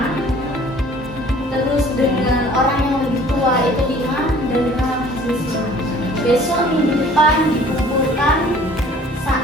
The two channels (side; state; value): both; normal; correlation 0.52